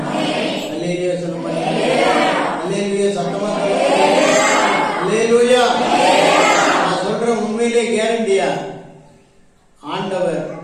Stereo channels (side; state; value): both; identical; correlation 1.00